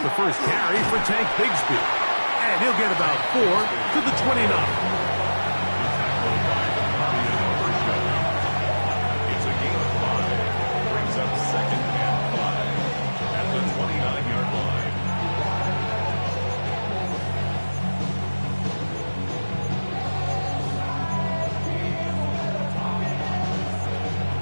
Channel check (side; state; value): both; inverted; correlation -1.00